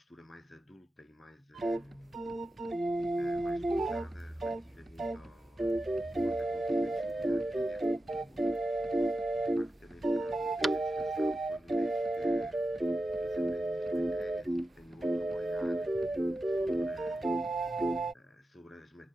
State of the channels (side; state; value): both; normal; correlation 0.91